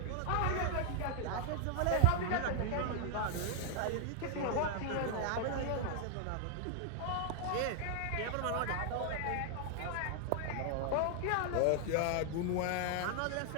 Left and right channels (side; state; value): both; different; correlation 0.00